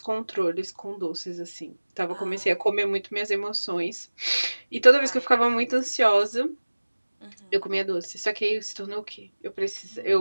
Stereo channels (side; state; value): both; inverted; correlation -1.00